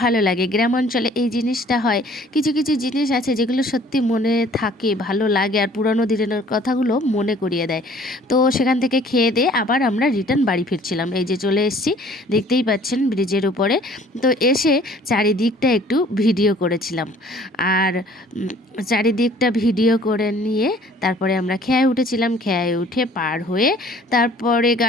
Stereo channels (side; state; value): both; normal; correlation 0.54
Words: লাগে। গ্রাম অঞ্চলে এই জিনিসটা হয়, কিছু কিছু জিনিস আছে যেগুলো সত্যি মনে থাকে, ভালো লাগে, আর পুরানো দিনের কথাগুলো মনে করিয়ে দেয়। তো সেখান থেকে খেয়ে দিয়ে আবার আমরা রিটার্ন বাড়ি ফিরছিলাম। এই যে চলে এসেছি, দেখতেই পাচ্ছেন ব্রিজের উপরে। তো এসে চারিদিকটা একটু ভিডিও করেছিলাম, আর চারিদিকটা ভিডিও করে নিয়ে তারপরে আমরা খেয়ায় উঠেছিলাম। খেয়ায় উঠে পার হয়ে তারপরে